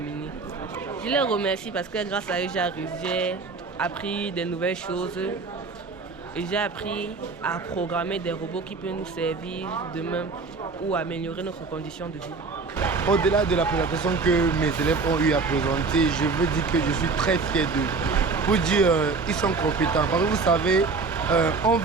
Je les remercie parce que grâce à eux, j'ai appris des nouvelles choses et j'ai appris à programmer des robots qui peuvent nous servir demain ou améliorer notre condition de vie. Au-delà de la présentation que mes élèves ont eu à présenter, je veux dire que je suis très fier d'eux. Pour dire, ils sont compétents. Parce que vous savez, on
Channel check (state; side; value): quieter; left; 4.3 dB